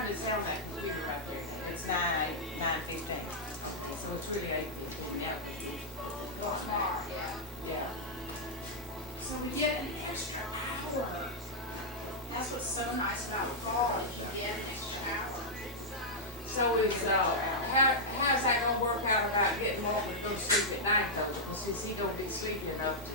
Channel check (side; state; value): both; normal; correlation -0.06